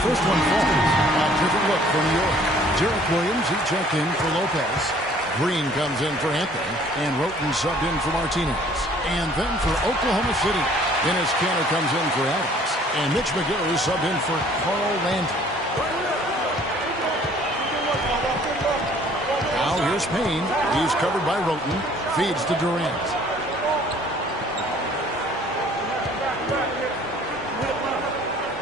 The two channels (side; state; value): both; normal; correlation 0.56